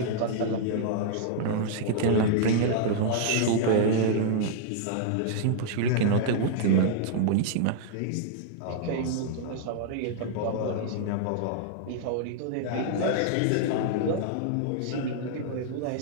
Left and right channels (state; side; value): different; both; correlation -0.01